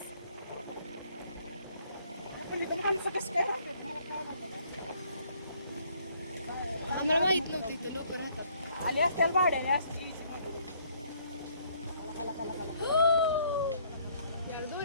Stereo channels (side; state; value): both; inverted; correlation -0.64